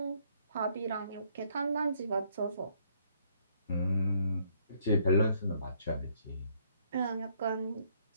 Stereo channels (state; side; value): inverted; both; correlation -0.68